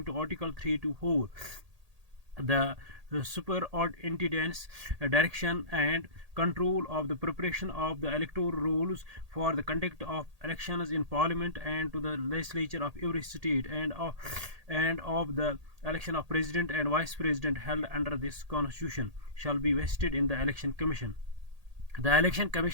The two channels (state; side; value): late; left; 1.8 ms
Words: the superintendence direction and control of the preparation of the electoral rules for the conduct of elections in parliament and to the legislature of every state and of the election of president and vice president held under this constitution shall be vested in the election commission. The election